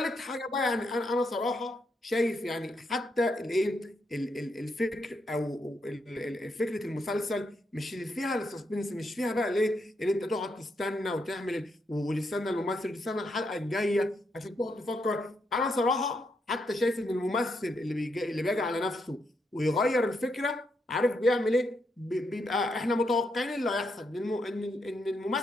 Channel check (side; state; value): both; normal; correlation 0.80